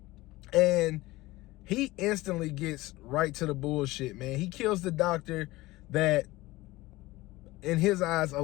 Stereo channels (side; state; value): right; quieter; 19.2 dB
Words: and he instantly gets right to the bullshit, man. He kills the doctor that, in his eyes,